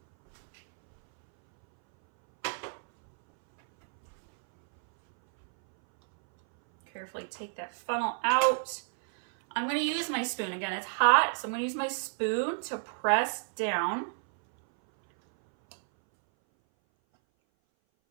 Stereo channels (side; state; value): left; silent; 58 dB below the other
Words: Carefully take that funnel out. I'm going to use my spoon. Again, it's hot, so I'm going to use my spoon to press down.